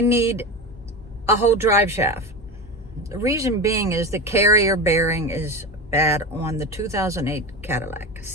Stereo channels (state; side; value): normal; both; correlation 0.24